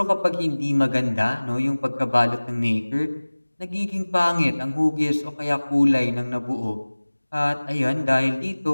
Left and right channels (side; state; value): both; inverted; correlation -1.00